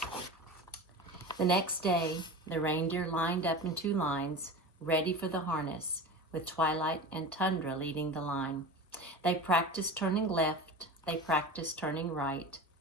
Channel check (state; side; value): normal; both; correlation 0.31